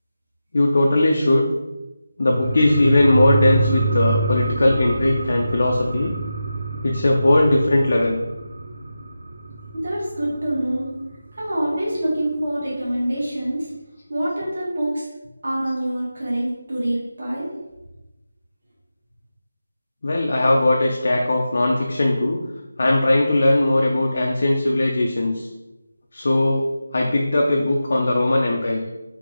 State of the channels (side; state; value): both; inverted; correlation -0.92